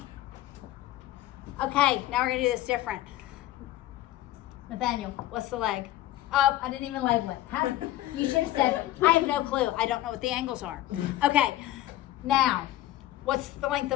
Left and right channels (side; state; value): right; quieter; 14.7 dB